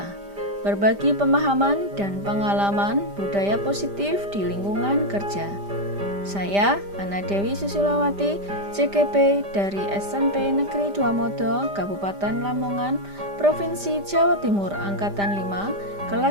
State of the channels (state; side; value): late; left; 5.0 ms